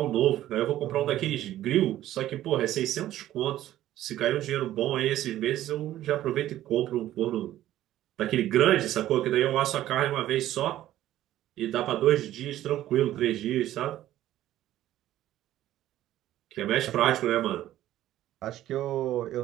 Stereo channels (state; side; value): quieter; left; 13.5 dB